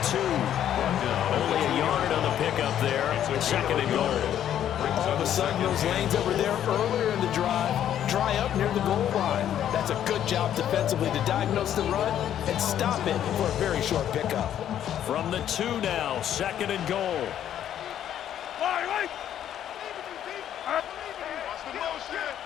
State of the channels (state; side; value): quieter; right; 10.5 dB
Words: 2. Only a yard on the pickup there. 2nd and goal. All of a sudden, those lanes that were there earlier in the drive dry up near the goal line. That's a good job defensively to diagnose the run and stop it for a very short pickup. From the 2 now, 2nd and goal.